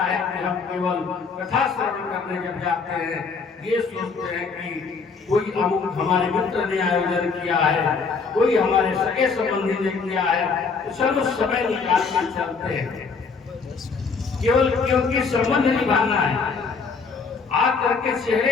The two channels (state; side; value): quieter; right; 5.0 dB